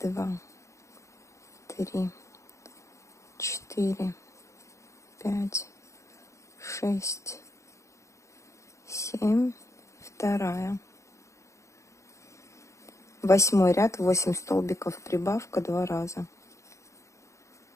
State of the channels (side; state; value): right; late; 0.14 ms